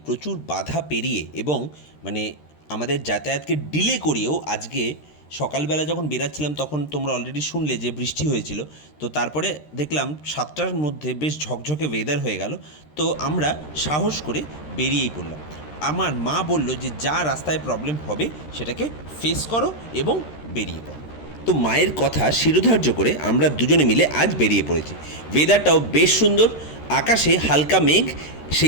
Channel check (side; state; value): right; late; 13 ms